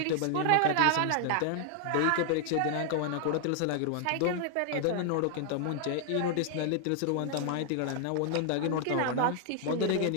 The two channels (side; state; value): both; different; correlation 0.00